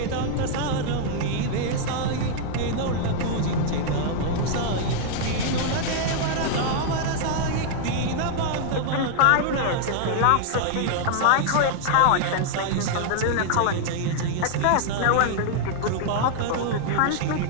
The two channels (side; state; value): both; different; correlation -0.01